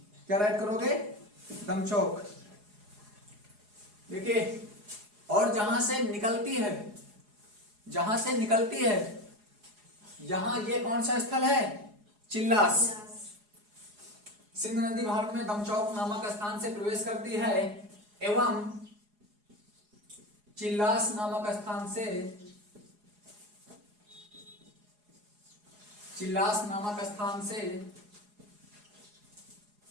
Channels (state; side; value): late; left; 4.8 ms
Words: क्या राइट करोगे? दमचौक। देखिए और जहां से निकलती है, जहां से निकलती है यहां ये कौन सा स्थल है? चिल्लास। सिंध नदी भारत में दमचौक नामक स्थान से प्रवेश करती है एवं चिल्लास नामक स्थान से